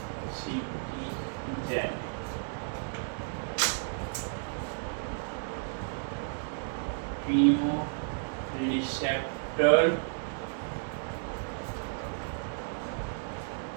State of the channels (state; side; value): silent; left; digital silence